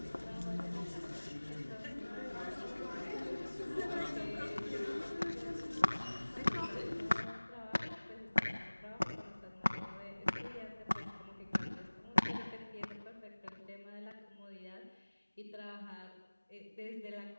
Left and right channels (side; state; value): both; inverted; correlation -1.00